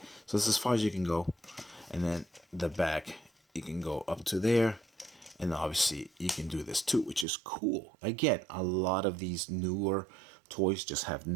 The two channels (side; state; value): left; drops out; at 7.2 s